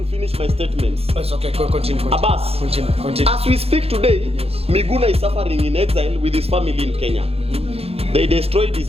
finish my statements. It's okay. Continue. Abbas, Continue. as we speak today, Yes. Miguna is suffering in exile with his family in Kenya. They destroyed his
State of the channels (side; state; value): left; late; 0.29 ms